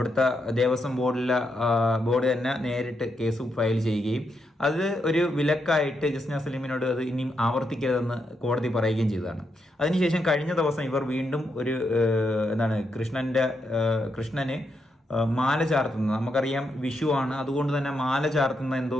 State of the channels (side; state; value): both; normal; correlation 0.81